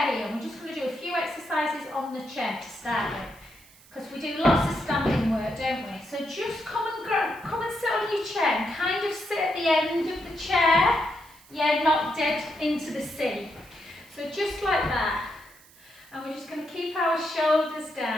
here, and we're just going to do a few exercises on the chair to start with. Because we do lots of standing work, don't we? So just come and sit on your chair and kind of sit at the end of the chair. Yeah, not dead into the seat. So just like that. And we're just going to keep our shoulders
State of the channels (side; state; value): right; noise; hiss, 25 dB below the sound